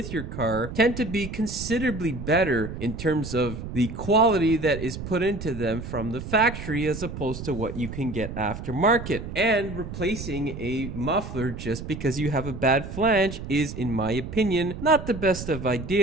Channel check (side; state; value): right; noise; rumble, 9 dB below the sound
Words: your car, tend to be considerably better in terms of the quality that is put into them from the factory as opposed to what you can get aftermarket. And replacing a muffler just because you have a bad flange is, in my opinion, not the best of